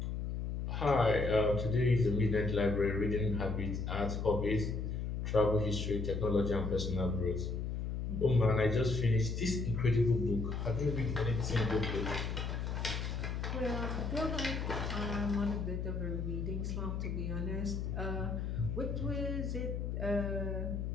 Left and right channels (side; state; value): left; noise; hum, 2 dB below the sound